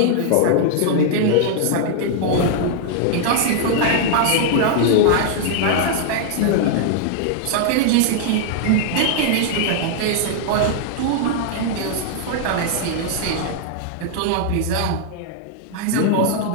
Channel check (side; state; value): both; different; correlation -0.01